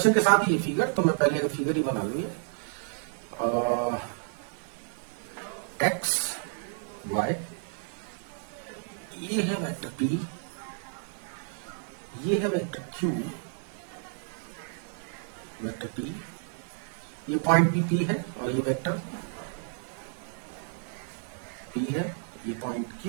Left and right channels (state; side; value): silent; left; digital silence